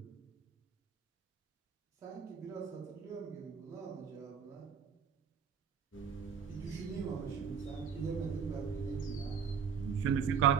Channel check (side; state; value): left; quieter; 7.0 dB